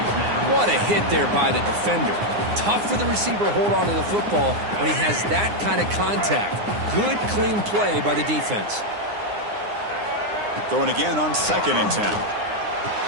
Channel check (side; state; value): left; late; 9.7 ms